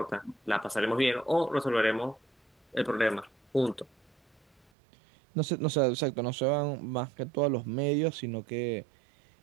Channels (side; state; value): left; drops out; at 4.6 s